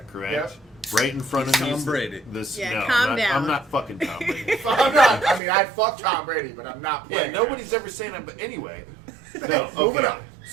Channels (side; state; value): left; drops out; at 5.4 s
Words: correct? Yep. Right in front He's of me. Tom is Brady. This, Yeah, no, calm I'm not, down. I'm not fucking Tom Brady. I'm not. I mean, I'd fuck Tom Brady, but I'm not. Yeah, playing. nobody's ever saying that. But anyway, no. Moving Okay. on.